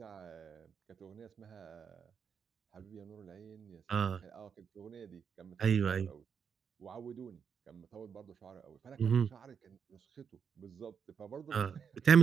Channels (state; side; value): quieter; left; 6.8 dB